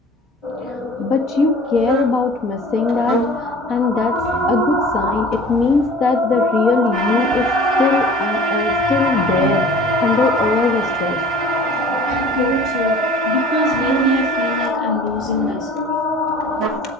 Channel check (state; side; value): normal; both; correlation 0.45